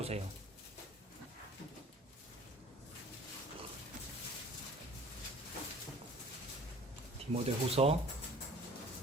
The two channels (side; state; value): both; normal; correlation 0.48